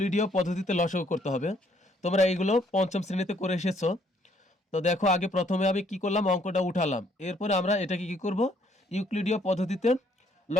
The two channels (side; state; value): both; normal; correlation 0.66